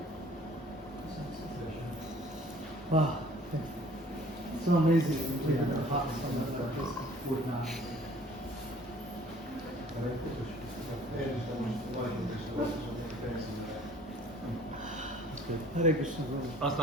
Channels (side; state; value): both; normal; correlation 0.53